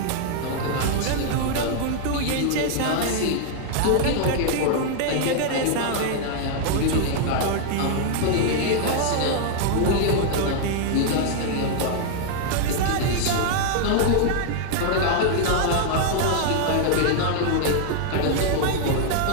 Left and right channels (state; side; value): different; both; correlation 0.00